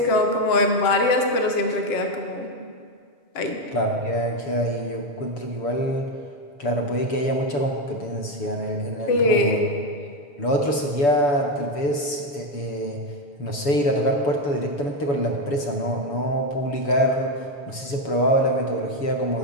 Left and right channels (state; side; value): late; right; 7.0 ms